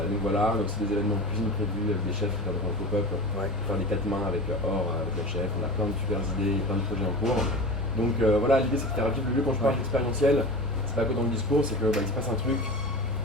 voilà, donc c'est des événements de cuisine prévus avec des chefs qui viendront en pop-up, faire des 4 mains avec Or, avec le chef. On a plein de super idées, plein de projets en cours. Donc voilà, l'idée c'est de faire vivre le lieu. Quand je parle d'expérientiel, c'est pas que dans le discours, c'est qu'il se passe un truc.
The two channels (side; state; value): both; normal; correlation 0.32